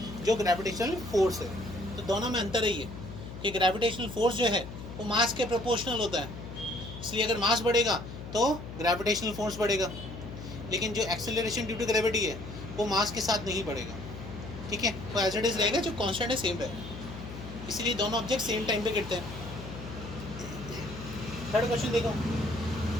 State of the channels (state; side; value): noise; left; hum, 11 dB below the sound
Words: जो ग्रेविटेशनल फोर्स है। तो दोनों में अंतर है ये कि ग्रेविटेशनल फोर्स जो है वो मास के प्रोपोर्शनल होता है, इसलिए अगर मास बढ़ेगा तो ग्रेविटेशनल फोर्स बढ़ेगा, लेकिन जो एक्सेलरेशन ड्यू टू ग्रेविटी है वो मास के साथ नहीं बढ़ेगा, ठीक है, वो एज इट इज रहेगा, जो कांस्टेंट है सेम रहेगा, इसीलिए दोनों ऑब्जेक्ट सेम टाइम पे गिरते हैं। थर्ड क्वेश्चन देखो,